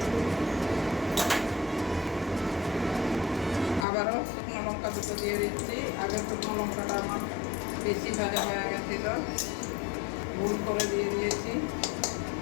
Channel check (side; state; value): right; drops out; at 3.9 s